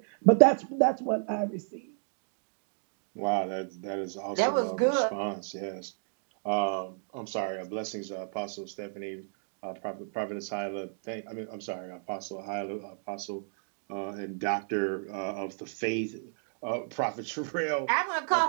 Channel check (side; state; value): left; silent; digital silence